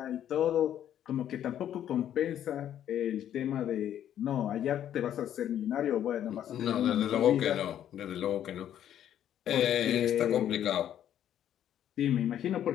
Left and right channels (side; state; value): right; quieter; 10.6 dB